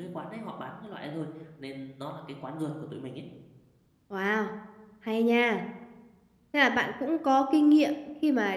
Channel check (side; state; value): both; identical; correlation 1.00